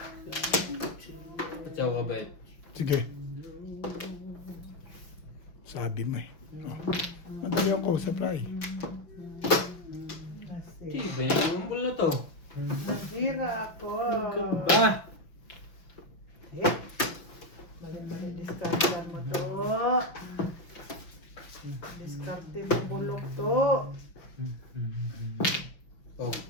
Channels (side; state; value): right; late; 5.9 ms